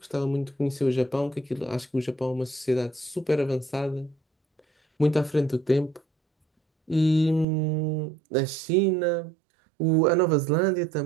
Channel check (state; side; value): drops out; left; at 7.5 s